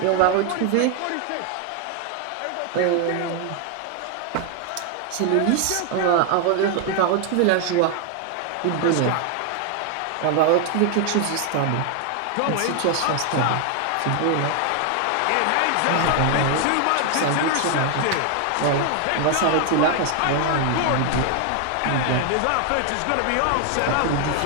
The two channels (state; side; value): different; both; correlation 0.00